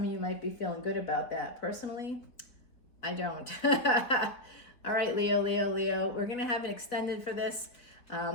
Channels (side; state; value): right; late; 4.0 ms